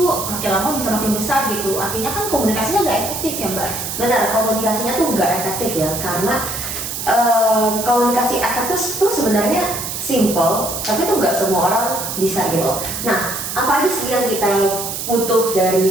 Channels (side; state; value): right; noise; hiss, 5 dB below the sound